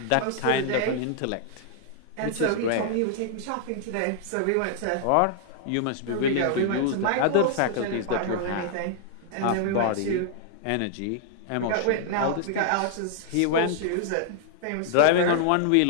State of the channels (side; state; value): both; different; correlation -0.01